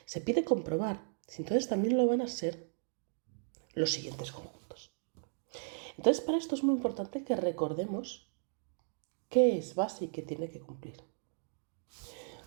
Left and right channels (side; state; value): left; silent; digital silence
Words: Se pide comprobar si entonces también lo van a ser los siguientes conjuntos. Entonces, para esto es muy importante que recordemos qué es base y qué tiene que cumplir.